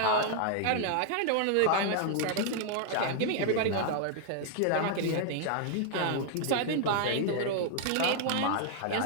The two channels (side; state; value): both; different; correlation 0.00